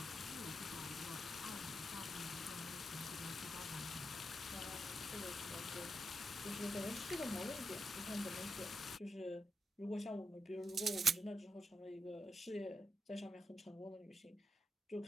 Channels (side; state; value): both; normal; correlation 0.84